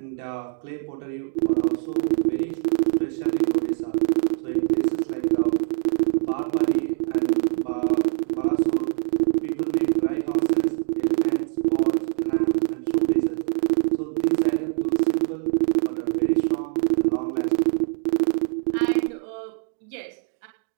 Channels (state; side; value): silent; left; digital silence